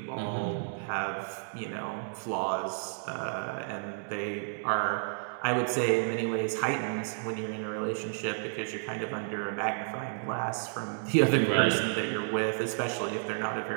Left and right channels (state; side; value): silent; left; digital silence